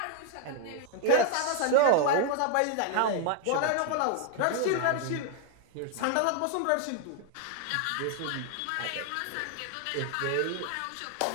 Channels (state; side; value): different; both; correlation 0.00